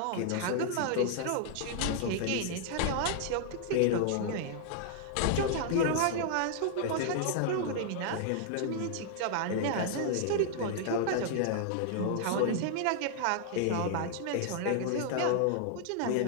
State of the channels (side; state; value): both; different; correlation 0.00